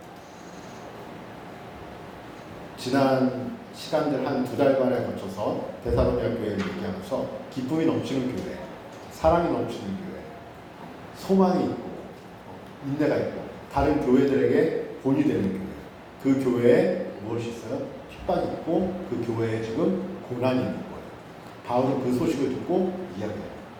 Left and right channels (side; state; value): both; identical; correlation 1.00